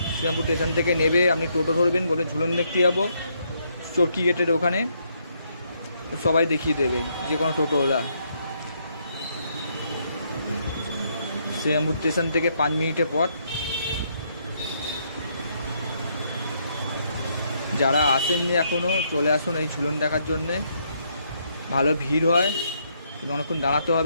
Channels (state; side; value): inverted; both; correlation -0.73